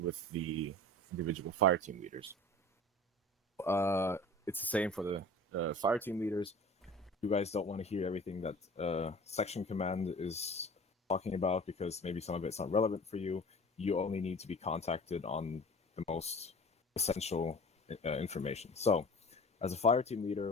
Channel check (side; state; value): both; normal; correlation 0.41